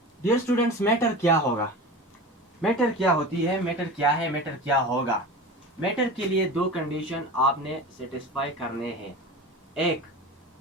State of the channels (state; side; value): normal; both; correlation 0.32